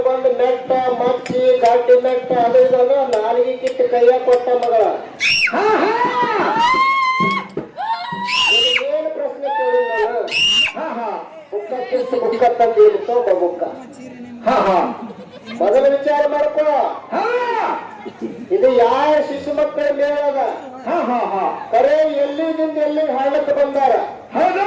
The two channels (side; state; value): both; identical; correlation 1.00